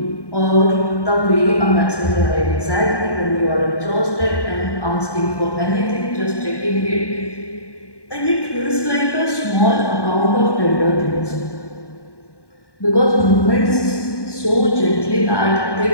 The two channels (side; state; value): right; late; 1.1 ms